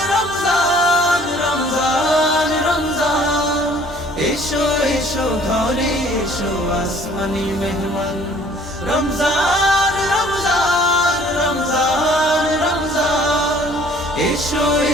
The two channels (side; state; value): both; normal; correlation 0.55